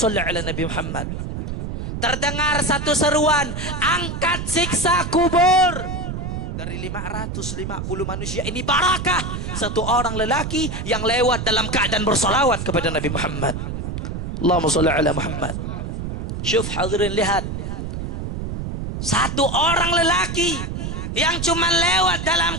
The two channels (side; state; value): right; noise; rumble, 5 dB below the sound